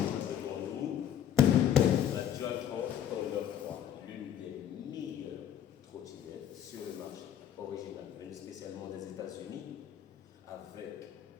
nous la Dualtron Thunder 3, l'une des meilleures trottinettes sur le marché, originale, venue spécialement des États-Unis.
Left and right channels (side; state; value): right; quieter; 10.1 dB